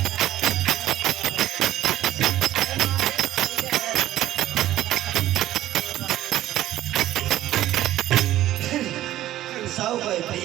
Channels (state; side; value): quieter; left; 14.0 dB